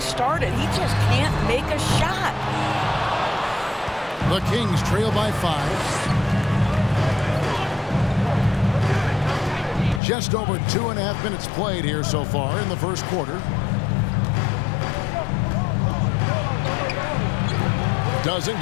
started. He just can't make a shot. The Kings trail by 5. Just over 2.5 minutes played here so far in the first quarter. Doesn't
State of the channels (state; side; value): drops out; right; at 10.0 s